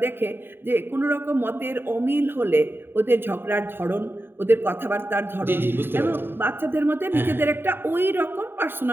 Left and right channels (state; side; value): late; left; 0.10 ms